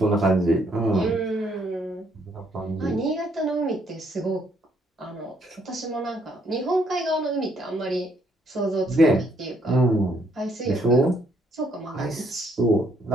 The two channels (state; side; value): normal; both; correlation 0.69